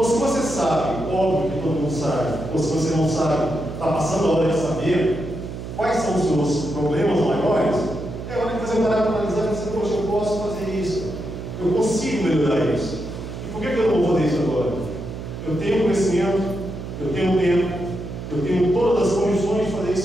se você sabe, óbvio que todo mundo sabe, ou se você não sabe, está passando a hora de saber quais são os seus problemas maiores, é hora de você parar para analisar e dizer, poxa, eu posso fazer isso, eu consigo melhorar isso. E por que eu não vou fazer isso agora? Eu tenho conhecimento, eu tenho tempo, eu tenho todas as condições de fazer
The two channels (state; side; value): noise; right; hum, 9 dB below the sound